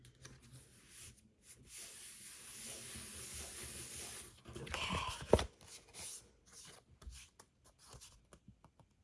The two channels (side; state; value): both; identical; correlation 1.00